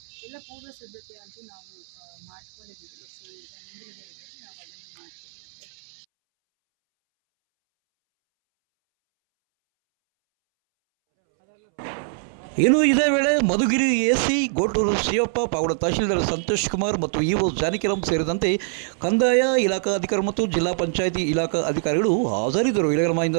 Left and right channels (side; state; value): left; silent; 63 dB below the other